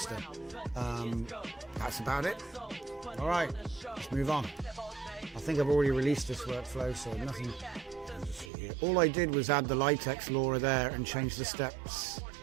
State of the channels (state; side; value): drops out; left; at 8.5 s